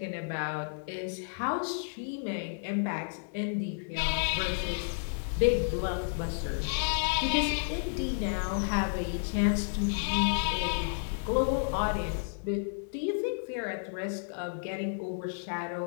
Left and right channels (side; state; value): right; silent; digital silence